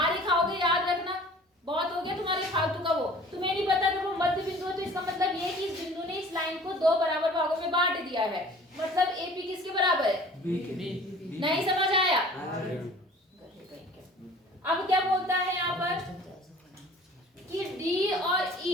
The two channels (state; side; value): normal; both; correlation 0.47